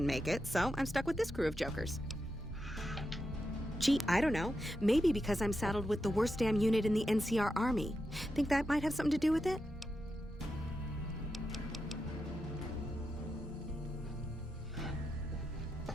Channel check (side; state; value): both; normal; correlation 0.87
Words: make it, so I'm stuck with this crew of jokers. Gee, I don't know. Maybe because I'm saddled with the worst damn unit in the NCR Army. Think that might have something to do with it?